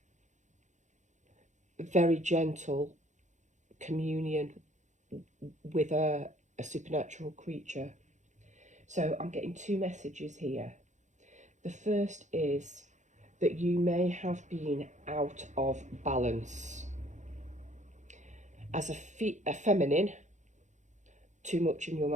very gentle communion with a supernatural creature. So I'm getting two messages here. The first is that you may have been out of balance. As a feminine, too much in your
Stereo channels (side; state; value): left; late; 0.35 ms